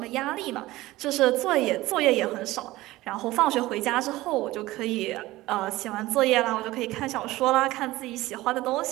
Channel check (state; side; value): quieter; left; 17.9 dB